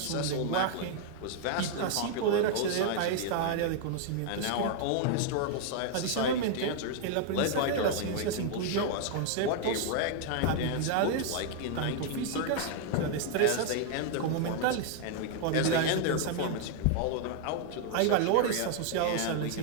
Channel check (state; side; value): different; both; correlation 0.00